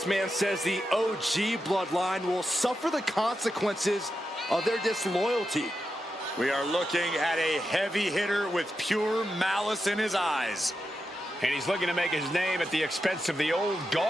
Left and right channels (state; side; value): normal; both; correlation 0.88